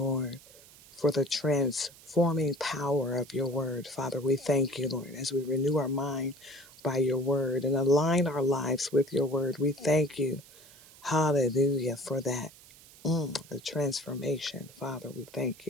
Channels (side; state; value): right; noise; hiss, 22 dB below the sound